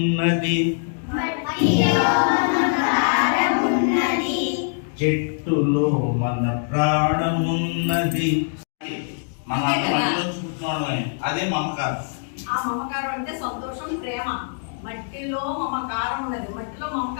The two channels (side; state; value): right; silent; digital silence